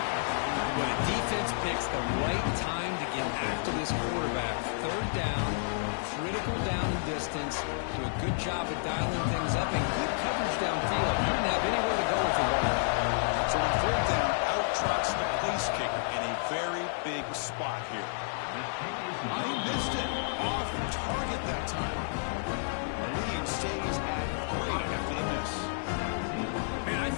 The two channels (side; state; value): right; silent; 57 dB below the other